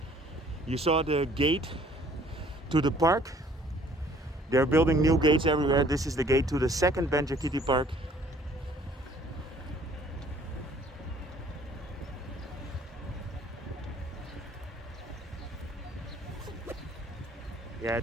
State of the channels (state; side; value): normal; both; correlation 0.57